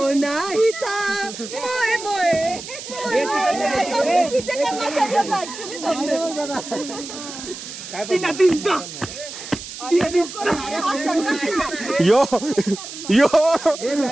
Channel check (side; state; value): right; noise; hiss, 11 dB below the sound